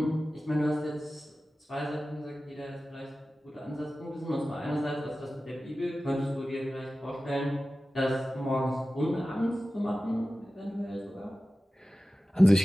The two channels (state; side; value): normal; both; correlation 0.95